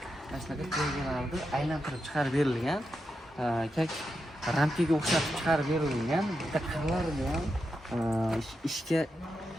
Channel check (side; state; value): both; normal; correlation 0.87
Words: ashlaga tegalarni aylantirib chiqarib berilgan. Kak rampiga o'xshatib chiqarib berilgan. Bitta qirlarini ham